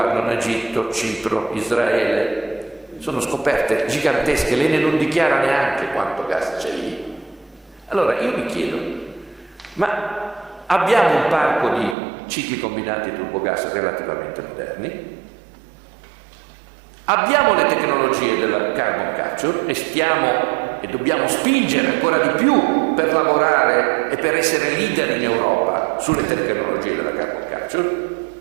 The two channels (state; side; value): drops out; left; at 12.0 s